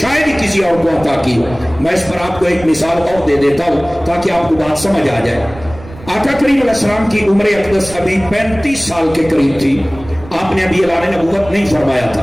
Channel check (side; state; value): right; noise; rumble, 16 dB below the sound